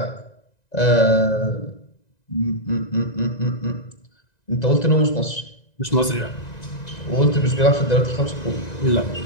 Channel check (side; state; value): right; late; 1.9 ms